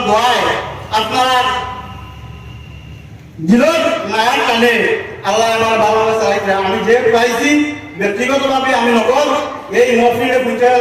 দোয়ায় আপনারা দিলের মায়ার টানে আল্লাহ আমার ভালোভাবে চালাইছে। আমি যে পাইছি ব্যক্তিগতভাবে আমি নগর এই মহফিলে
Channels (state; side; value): identical; both; correlation 1.00